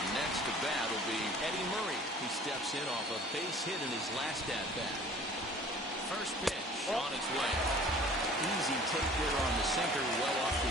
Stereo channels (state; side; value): normal; both; correlation 0.48